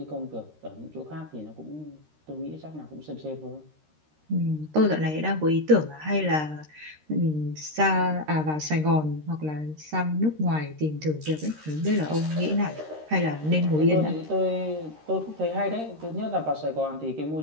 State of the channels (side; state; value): left; late; 13 ms